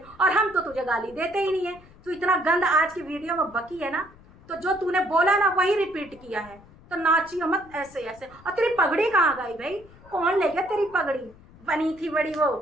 हूँ, और हम तो तुझे गाली देते ही नहीं है। तू इतना गंद आज की वीडियो में बकी है ना, तो जो तूने बोला ना वही रिपीट किया है। तो नाचियो मत ऐसे ऐसे। और तेरी पगड़ी कहाँ गई भाई? कौन ले गया तेरी पगड़ी? बनी थी बड़ी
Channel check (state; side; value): noise; left; rumble, 24 dB below the sound